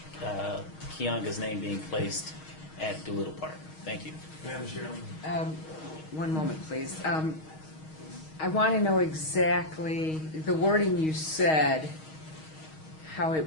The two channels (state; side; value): late; right; 6.4 ms